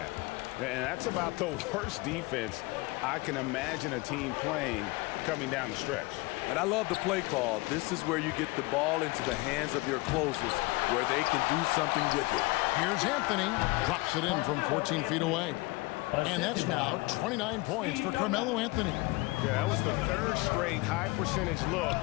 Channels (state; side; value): quieter; right; 23.5 dB